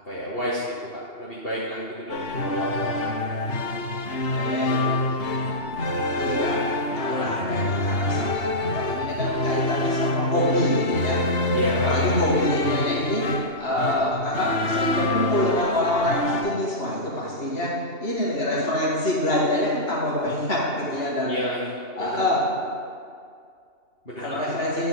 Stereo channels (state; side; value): late; right; 2.8 ms